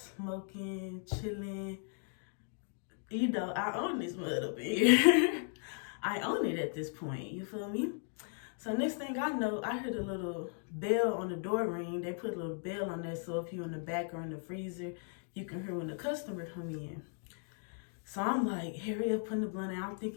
chilling. You know, I own this mud up here. I own it at this point, you feel me? So next thing I know, I heard a little bell on the door ring. They put a little bell on there, so if you're in the back or in the freezer, you can hear when the customer come in. So I'm like, hurry up, putting the blunt out. I'm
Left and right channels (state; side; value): silent; right; 53 dB below the other